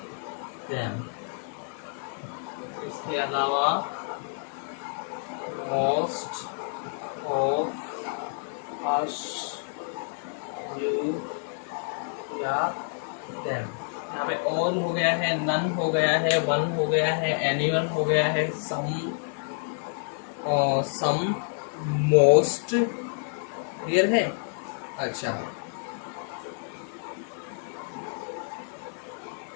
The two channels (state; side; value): silent; right; 59 dB below the other